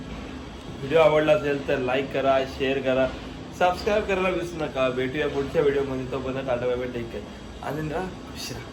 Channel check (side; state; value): both; identical; correlation 1.00